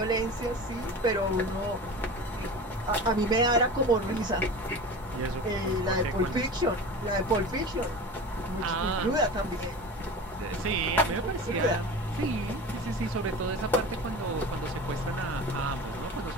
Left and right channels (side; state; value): both; normal; correlation 0.33